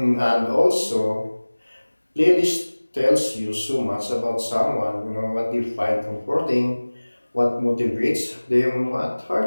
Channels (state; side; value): inverted; both; correlation -1.00